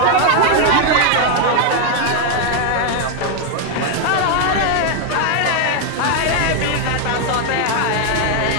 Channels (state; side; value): different; both; correlation 0.00